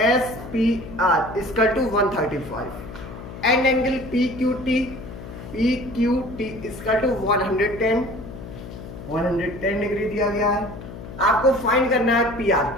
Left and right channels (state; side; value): noise; left; hum, 12 dB below the sound